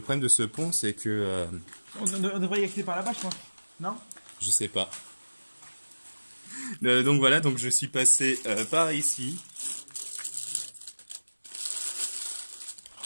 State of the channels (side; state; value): both; inverted; correlation -1.00